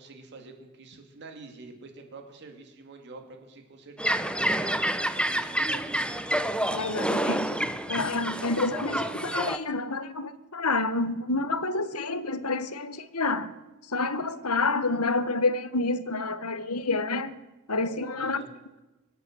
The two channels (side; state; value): both; normal; correlation 0.15